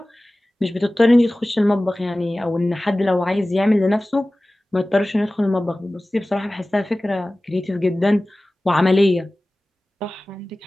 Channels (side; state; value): both; normal; correlation 0.97